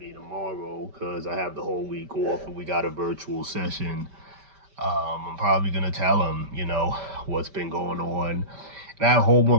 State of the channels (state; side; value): late; left; 5.1 ms